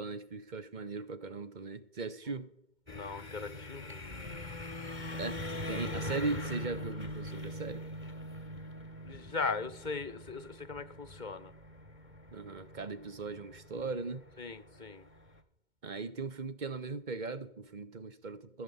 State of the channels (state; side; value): late; left; 2.2 ms